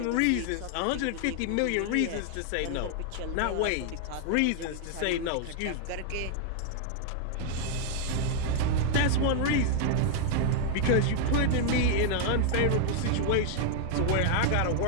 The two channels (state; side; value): different; both; correlation 0.00